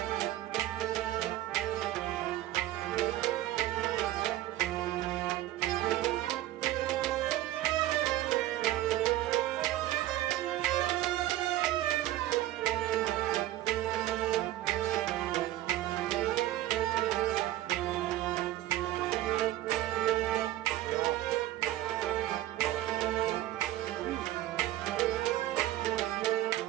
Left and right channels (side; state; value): left; quieter; 14.7 dB